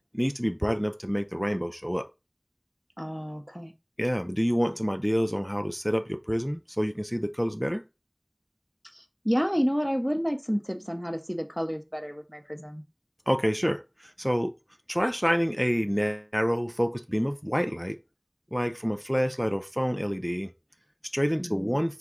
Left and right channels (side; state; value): both; identical; correlation 1.00